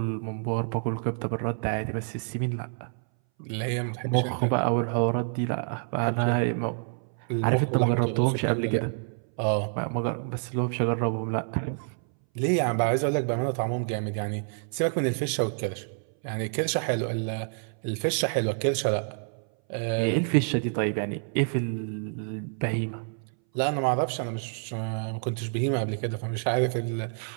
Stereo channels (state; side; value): silent; left; 59 dB below the other